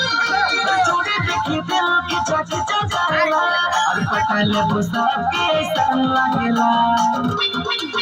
चोरी देखी दिल की चाची चचाला, और पहले बुसा के संग लगेला।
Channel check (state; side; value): identical; both; correlation 1.00